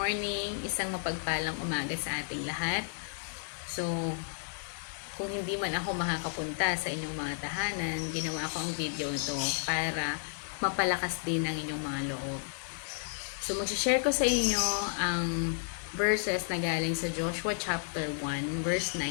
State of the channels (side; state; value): right; silent; digital silence